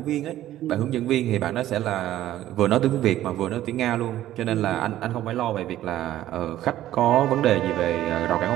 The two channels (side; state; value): left; quieter; 13.5 dB